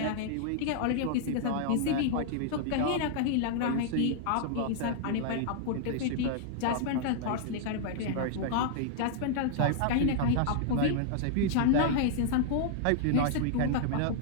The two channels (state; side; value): different; both; correlation -0.01